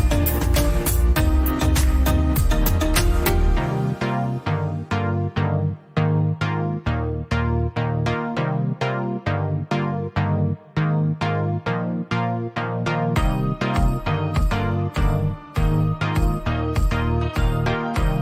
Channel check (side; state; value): both; identical; correlation 1.00